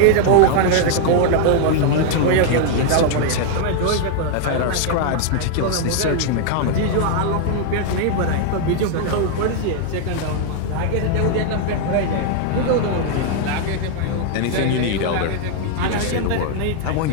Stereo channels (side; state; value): both; different; correlation 0.00